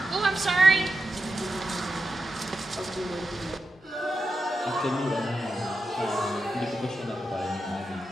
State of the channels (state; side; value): normal; both; correlation 0.89